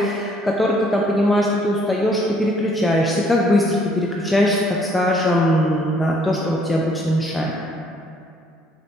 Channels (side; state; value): both; normal; correlation 0.64